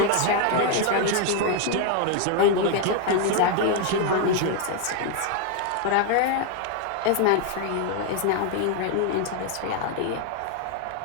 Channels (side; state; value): both; different; correlation 0.00